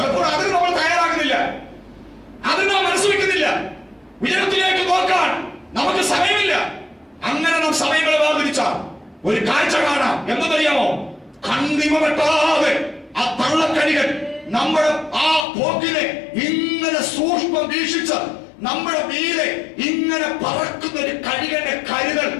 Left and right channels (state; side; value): drops out; right; at 15.5 s